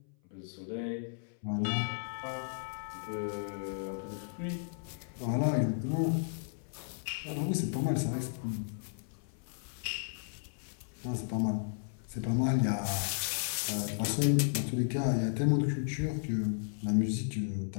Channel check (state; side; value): silent; right; 55 dB below the other